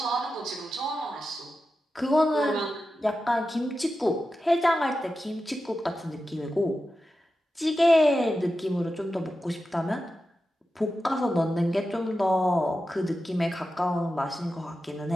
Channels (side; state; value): both; normal; correlation 0.91